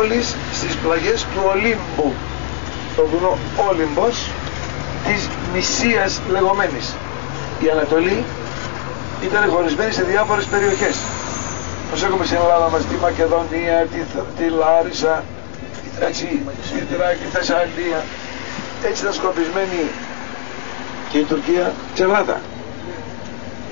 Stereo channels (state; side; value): silent; right; digital silence